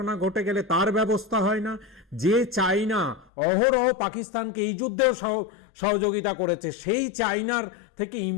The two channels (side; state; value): right; drops out; at 3.2 s